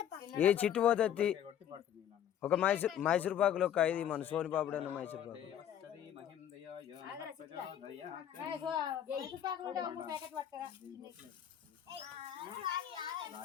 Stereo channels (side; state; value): right; quieter; 10.0 dB